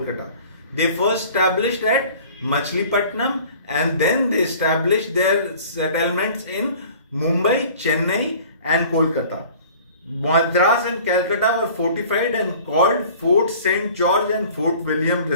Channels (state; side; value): inverted; both; correlation -0.47